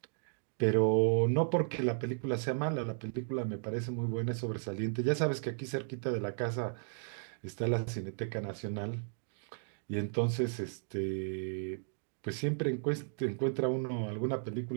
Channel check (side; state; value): left; silent; digital silence